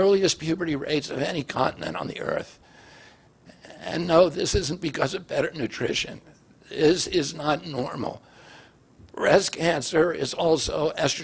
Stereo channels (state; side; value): identical; both; correlation 1.00